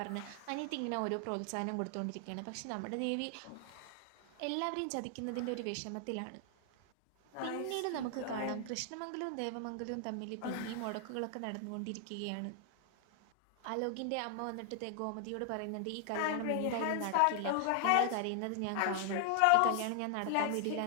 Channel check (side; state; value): both; different; correlation 0.00